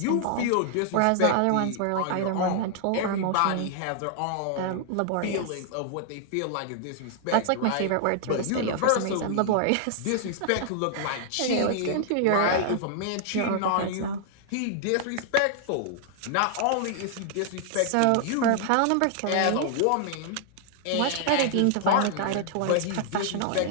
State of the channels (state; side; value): different; both; correlation -0.01